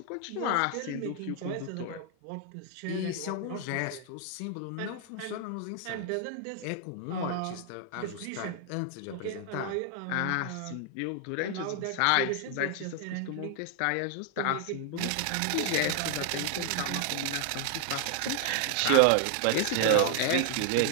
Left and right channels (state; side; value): different; both; correlation 0.00